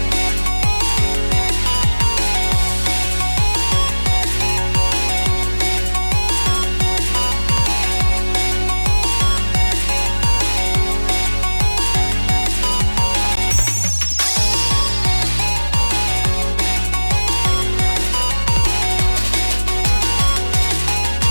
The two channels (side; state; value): both; inverted; correlation -1.00